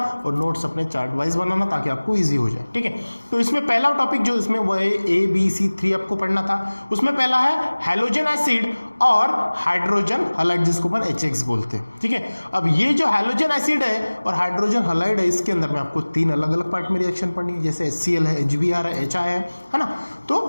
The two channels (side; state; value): both; inverted; correlation -1.00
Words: और नोट्स अपने चार्ट वाइज बनाना ताकि आपको इजी हो जाए, ठीक है। तो इसमें पहला टॉपिक जो इसमें वो है ABC3 आपको पढ़ना था। उसमें पहला है हैलोजन एसिड और हाइड्रोजन हैलाइड, जिसको अपन HX बोलते हैं, ठीक है। अब ये जो हैलोजन एसिड है और हाइड्रोजन हैलाइड है, इसके अंदर में आपको 3 अलग अलग पार्ट में रिएक्शन पढ़नी है। जैसे HCl है, HBr है, HI है ना। तो